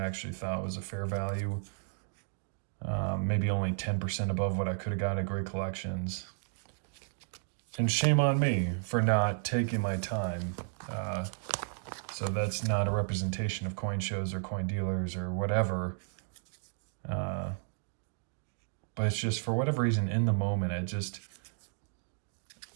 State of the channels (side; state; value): left; silent; digital silence